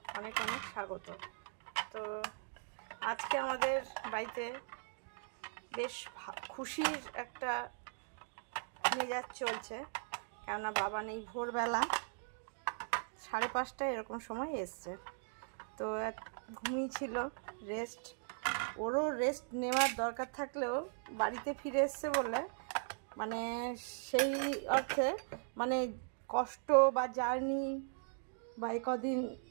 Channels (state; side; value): silent; left; digital silence